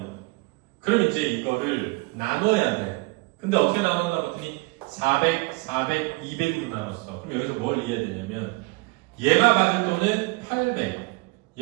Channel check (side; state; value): left; quieter; 26.8 dB